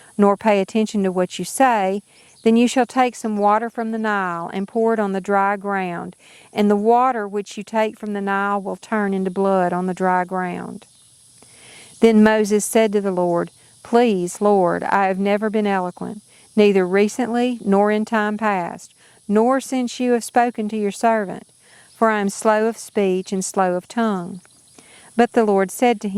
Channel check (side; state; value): both; identical; correlation 1.00